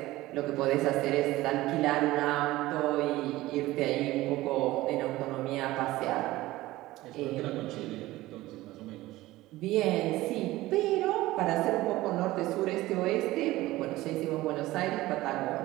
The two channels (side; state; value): left; quieter; 17.7 dB